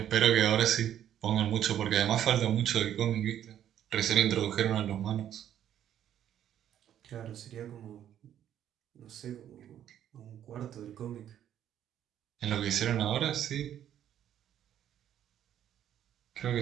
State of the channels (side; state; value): left; quieter; 10.6 dB